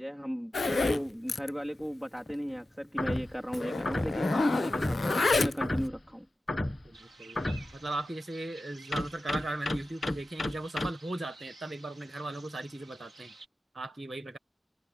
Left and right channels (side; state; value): both; normal; correlation 0.93